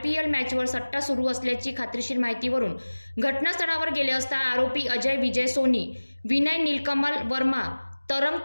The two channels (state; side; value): inverted; both; correlation -1.00